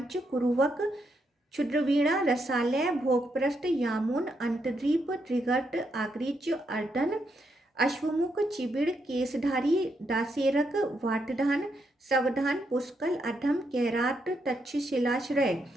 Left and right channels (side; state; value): both; normal; correlation 0.79